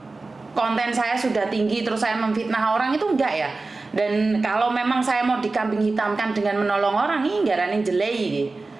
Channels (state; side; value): quieter; left; 3.6 dB